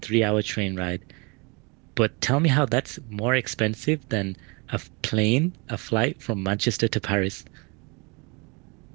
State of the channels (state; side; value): quieter; left; 29.7 dB